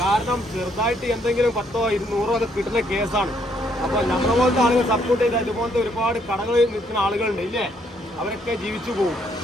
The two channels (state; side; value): normal; both; correlation 0.70